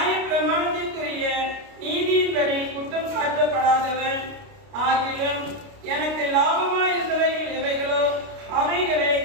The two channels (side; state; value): left; late; 29 ms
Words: பிரமாணத்திற்குரிய நீதியின்படி குற்றம் சாட்டப்படாதவன். ஆகிலும் எனக்கு லாபமாய் இருந்தவைகள் எவைகளோ அவைகளை